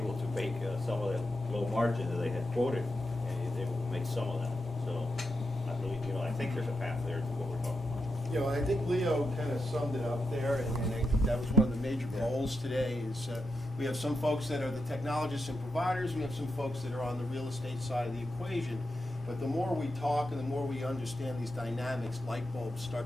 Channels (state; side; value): normal; both; correlation 0.87